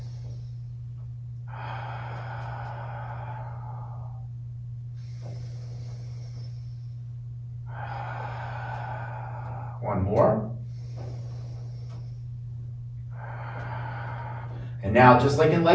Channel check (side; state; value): both; identical; correlation 1.00